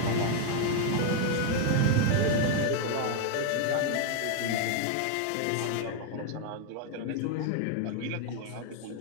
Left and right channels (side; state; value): both; different; correlation 0.00